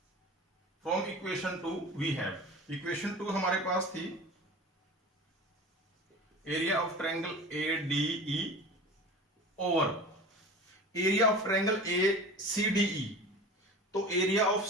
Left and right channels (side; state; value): both; normal; correlation 0.36